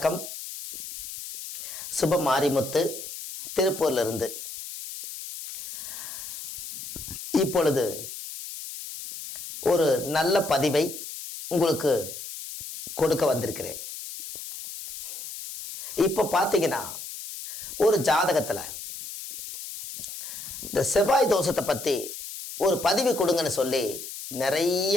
சுப மாரிமுத்து திருப்பூர்ல இருந்து. இப்பொழுது ஒரு நல்ல பதிவை உங்களுக்கு கொடுக்க வந்திருக்கிறேன். இப்போ பார்த்தீங்கன்னா ஒரு ஜாதகத்துல இந்த செவ்வாய் தோஷத்தை பத்தி ஒரு பதிவு கொடுங்கன்னு சொல்லி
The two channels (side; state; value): left; noise; hiss, 9 dB below the sound